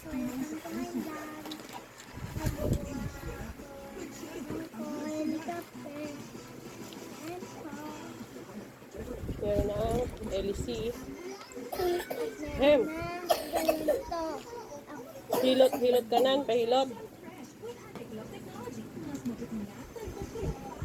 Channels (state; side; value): identical; both; correlation 1.00